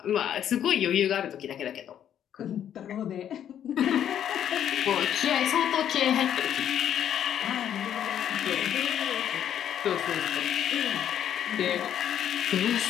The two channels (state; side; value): quieter; right; 9.9 dB